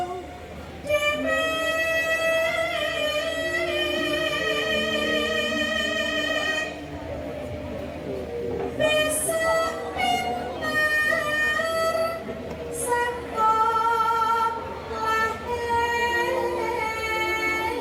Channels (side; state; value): both; identical; correlation 1.00